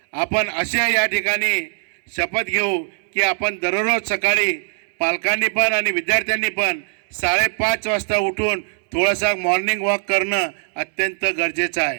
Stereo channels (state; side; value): silent; left; digital silence